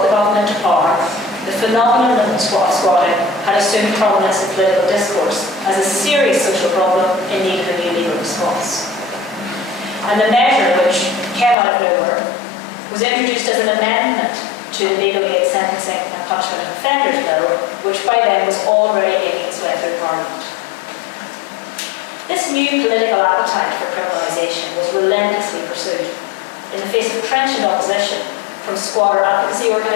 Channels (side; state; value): right; drops out; at 11.6 s